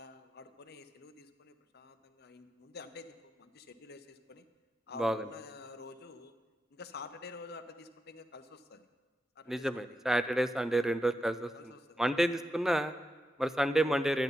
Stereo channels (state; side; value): normal; both; correlation 0.87